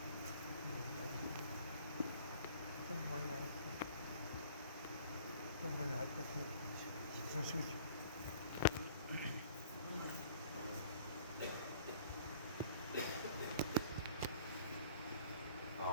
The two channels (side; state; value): both; inverted; correlation -0.52